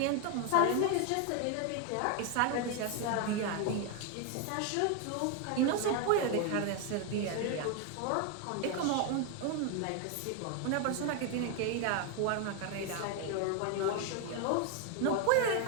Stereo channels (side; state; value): both; different; correlation 0.01